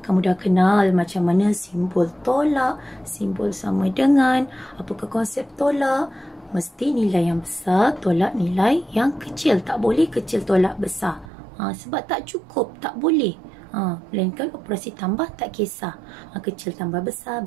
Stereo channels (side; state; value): left; drops out; at 11.3 s